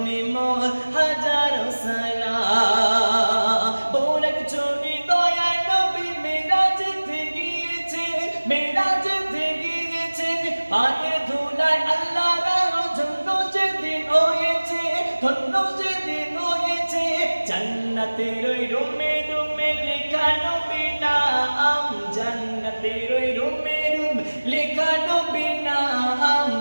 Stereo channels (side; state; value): both; inverted; correlation -1.00